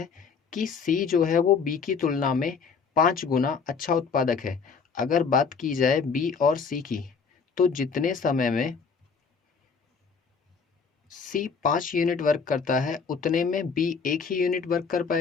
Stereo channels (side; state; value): right; quieter; 5.6 dB